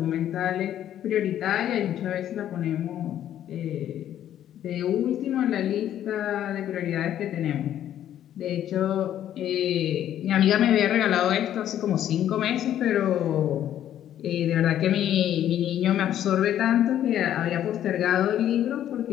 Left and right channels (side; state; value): right; quieter; 11.1 dB